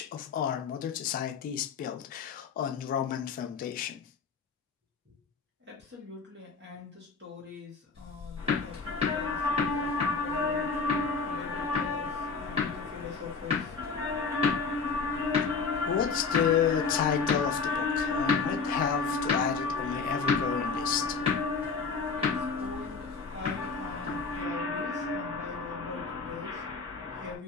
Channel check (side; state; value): right; quieter; 5.1 dB